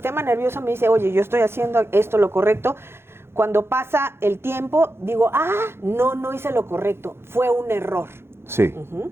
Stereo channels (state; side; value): late; left; 0.12 ms